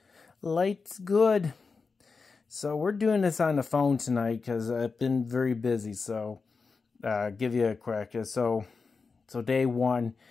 Light's good. So we're doing this on the phone tonight because I've been very busy. So give you a crack. So day one,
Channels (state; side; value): quieter; right; 4.7 dB